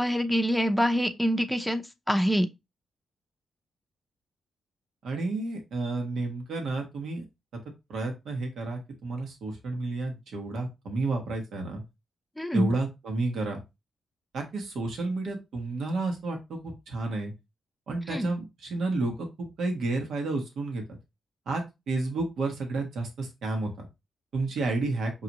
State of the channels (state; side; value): normal; both; correlation 0.87